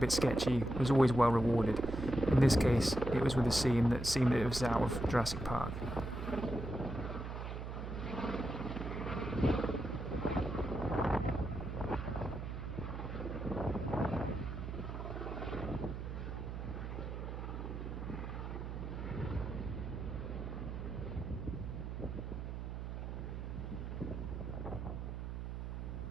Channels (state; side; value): noise; right; hum, 6 dB below the sound